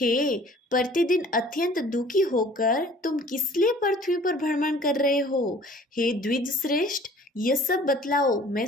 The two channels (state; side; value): normal; both; correlation 0.51